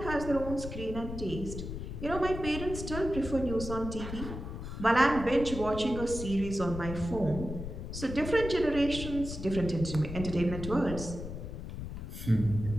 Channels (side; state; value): left; noise; rumble, 7 dB below the sound